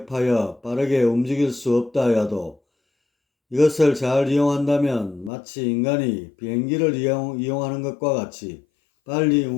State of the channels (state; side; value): drops out; right; at 5.3 s